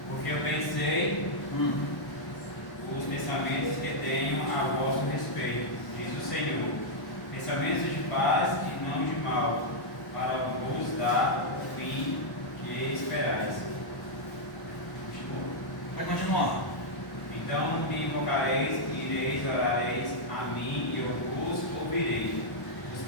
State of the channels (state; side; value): late; right; 1.1 ms